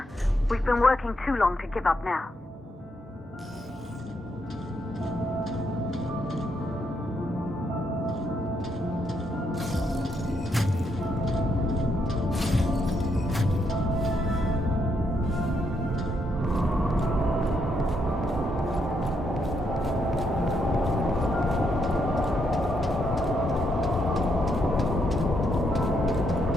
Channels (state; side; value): normal; both; correlation 0.77